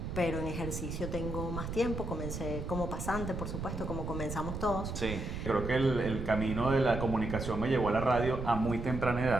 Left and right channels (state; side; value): noise; right; rumble, 5 dB below the sound